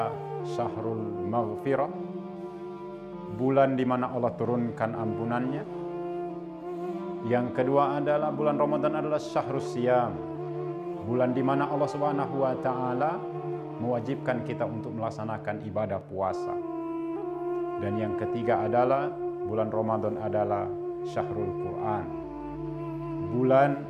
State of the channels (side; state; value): both; identical; correlation 1.00